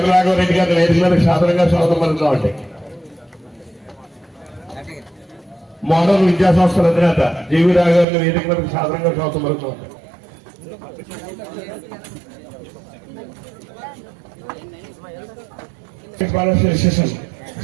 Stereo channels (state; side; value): drops out; left; at 8.1 s